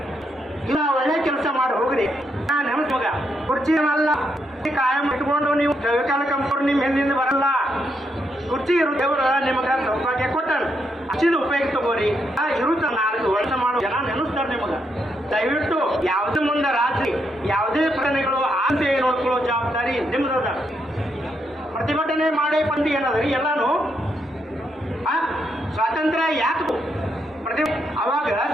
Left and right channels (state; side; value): normal; both; correlation 0.79